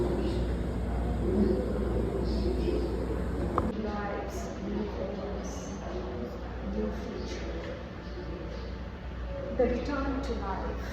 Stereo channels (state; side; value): identical; both; correlation 1.00